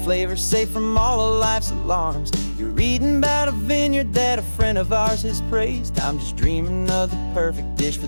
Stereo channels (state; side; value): inverted; both; correlation -1.00